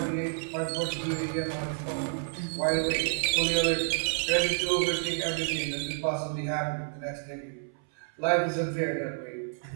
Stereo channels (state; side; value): silent; left; 58 dB below the other